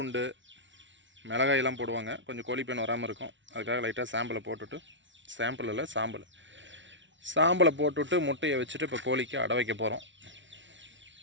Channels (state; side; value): late; left; 0.55 ms